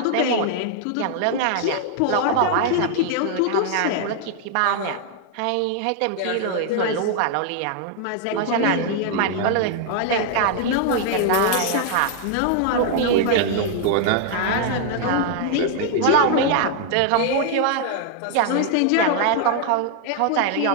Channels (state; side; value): different; both; correlation 0.00